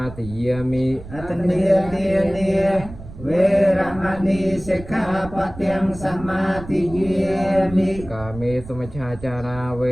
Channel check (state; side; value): noise; right; rumble, 15 dB below the sound